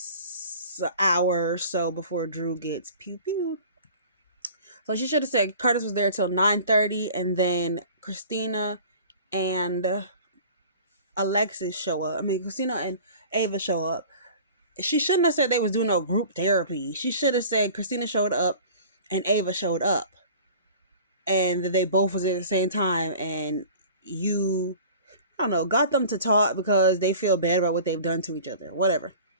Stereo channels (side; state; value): both; inverted; correlation -0.43